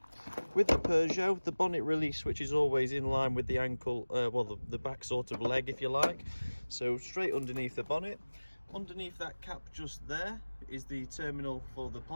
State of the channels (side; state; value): both; inverted; correlation -1.00